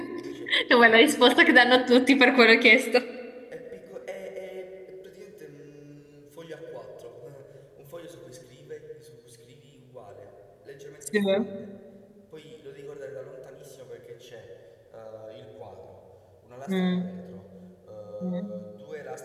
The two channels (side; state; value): both; identical; correlation 1.00